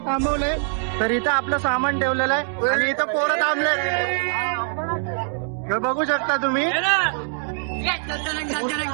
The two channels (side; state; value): left; silent; digital silence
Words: थांबवलंय तर इथं आपलं सामान ठेवलेलं आहे आणि इथं पोरं थांबले. हे बघू शकता तुम्ही.